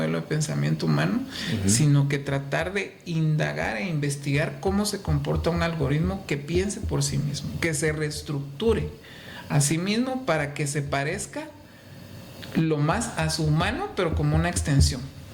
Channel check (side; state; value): both; identical; correlation 1.00